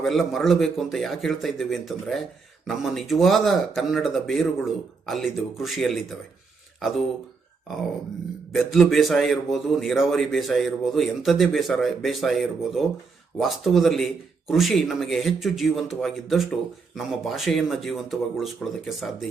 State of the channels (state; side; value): quieter; left; 4.7 dB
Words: ಮರಳಬೇಕು ಅಂತ ಯಾಕೆ ಹೇಳ್ತಾ ಇದ್ದೇವೆ ಅಂತಂದರೆ, ನಮ್ಮ ನಿಜವಾದ ಕನ್ನಡದ ಬೇರುಗಳು ಅಲ್ಲಿದ್ದವು, ಕೃಷಿಯಲ್ಲಿದ್ದಾವೆ. ಅದು ಬೆದ್ಲು ಬೇಸಾಯ ಇರ್ಬೋದು, ನೀರಾವರಿ ಬೇಸಾಯ ಇರ್ಬೋದು, ಎಂಥದ್ದೇ ಬೇಸಾಯ ಇರ್ಬೋದು. ವಾಸ್ತವದಲ್ಲಿ ಕೃಷಿ ನಮಗೆ ಹೆಚ್ಚು ಜೀವಂತವಾಗಿದ್ದಷ್ಟು ನಮ್ಮ ಭಾಷೆಯನ್ನು ಜೀವಂತವಾಗಿ ಉಳಿಸ್ಕೊಳ್ಳೋದಕ್ಕೆ ಸಾಧ್ಯ